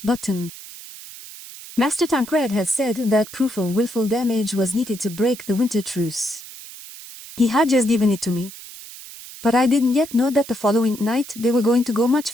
button. Master Tancred had said that proof of willful damage was needed to break the winter truce. He had just given it to me. But I didn't yet know that the following night they were going to go much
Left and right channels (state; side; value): noise; right; hiss, 15 dB below the sound